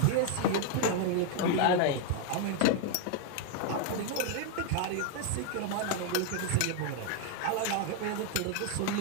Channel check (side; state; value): both; different; correlation 0.00